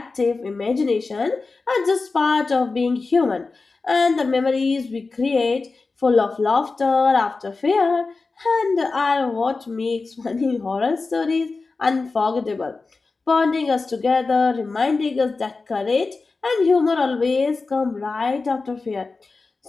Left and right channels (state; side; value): quieter; right; 4.0 dB